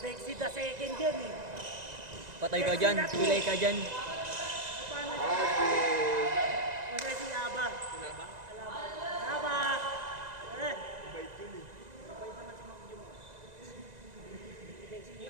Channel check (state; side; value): late; left; 1.9 ms